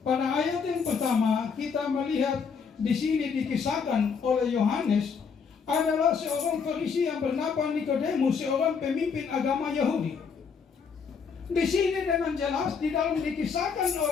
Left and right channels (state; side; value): quieter; right; 5.9 dB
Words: Pada ayat yang pertama kita melihat di sini dikisahkan oleh Yohanes adalah seorang Farisi yang bernama Nikodemus, seorang pemimpin agama Yahudi. Di sini dengan jelas di dalam dikisahkan